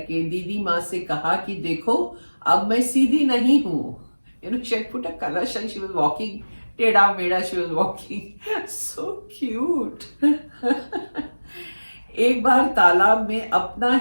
दीदी माँ से कहा कि देखो अब मैं सीधी नहीं हूँ। She had put a kalash and she was walking टेढ़ा मेढ़ा she was walking, so cute. एक बार तालाब में अपना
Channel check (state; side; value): inverted; both; correlation -1.00